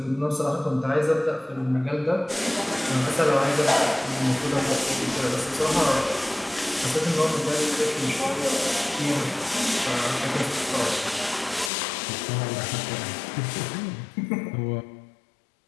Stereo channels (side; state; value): right; drops out; at 11.7 s